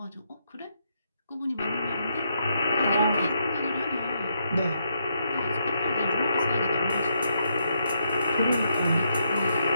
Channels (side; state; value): both; inverted; correlation -0.78